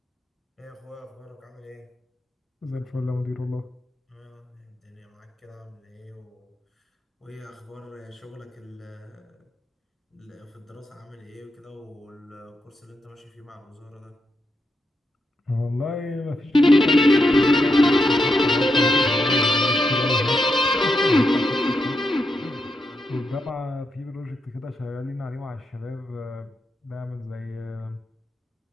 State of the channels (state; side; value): normal; both; correlation 0.84